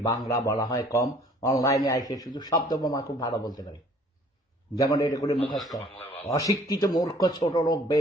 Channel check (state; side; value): normal; both; correlation 0.55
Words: বাংলা বলা হয় কম। অনলাইনে আইসে শুধু শব্দ বোমা খুব ভালো বলতে পারি, যেমন এটা করে মুখস্থ। অশিক্ষিত মূর্খ ছোট লোক